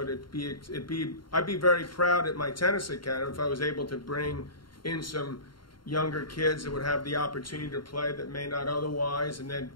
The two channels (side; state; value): right; late; 0.72 ms